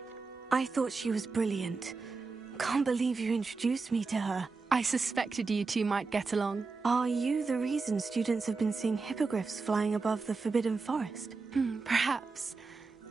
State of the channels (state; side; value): quieter; left; 4.3 dB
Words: I thought she was brilliant. Can't believe you introduced me to her. I suspected you two might get along. Are you the reason students have been seeing hippogriffs flying above the Forbidden Forest? Perhaps.